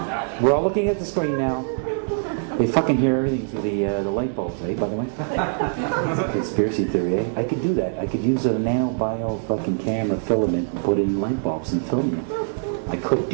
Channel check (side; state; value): left; silent; digital silence